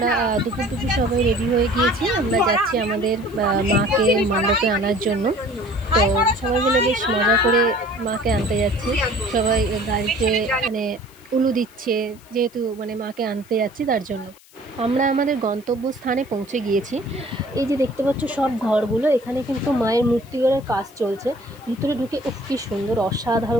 দুপুর সবাই রেডি হয়ে গিয়েছি। আমরা যাচ্ছি আমাদের মাকে মণ্ডপে আনার জন্য। তো সবাই মিলে বেশ মজা করে মাকে আনতে যাচ্ছি। সবাই গাড়িতে মানে উলু দিচ্ছে, যেহেতু মানে মাকে আনতে যাচ্ছি, তার জন্য আমরা আমাদের গন্তব্যস্থানে পৌঁছে গিয়েছি। এই যে দেখতে পাচ্ছ সব ঘরগুলো, এখানে কিন্তু মায়ের মূর্তি গড়ার কাজ চলছে। ভিতরে ঢুকে কি সুন্দর,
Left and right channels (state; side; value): noise; left; hiss, 26 dB below the sound